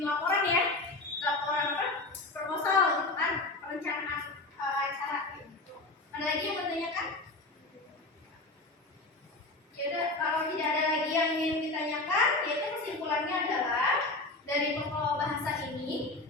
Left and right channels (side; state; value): right; quieter; 3.1 dB